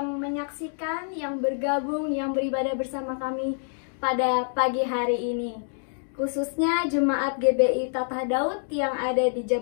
menyaksikan, yang bergabung, yang beribadah bersama kami pada pagi hari ini. Khususnya Jemaat GBI Tatah Daud yang ada di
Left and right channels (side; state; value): right; silent; digital silence